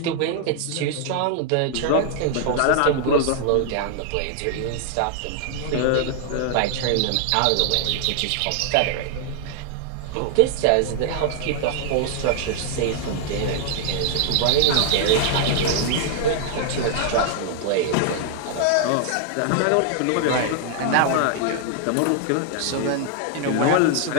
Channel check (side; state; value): both; different; correlation 0.00